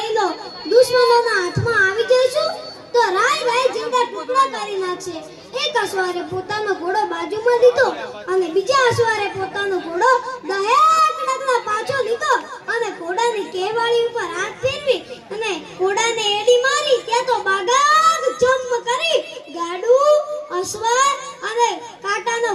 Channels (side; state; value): both; identical; correlation 1.00